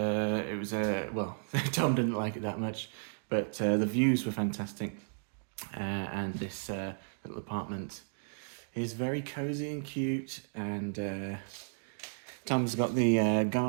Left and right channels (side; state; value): left; silent; digital silence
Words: was well, Tom didn't like it that much, but the views were fantastic, and this little apartment is very cozy and cute, and Tom's got the